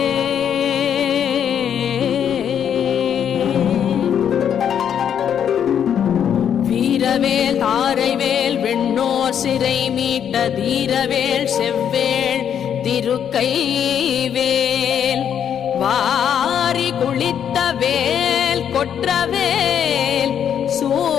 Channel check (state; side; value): quieter; right; 8.8 dB